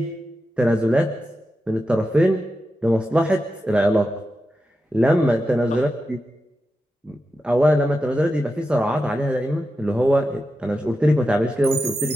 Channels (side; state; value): both; normal; correlation 0.90